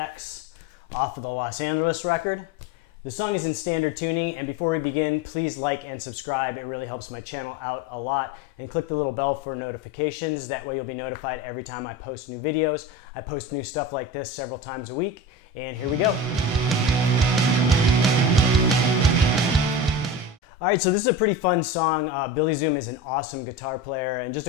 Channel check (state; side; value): normal; both; correlation 0.28